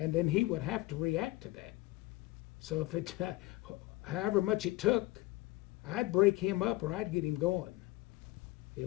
then he would have to react to that. So if it, however much it took, I'd break him up or I'd get him going.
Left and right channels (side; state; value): right; quieter; 18.9 dB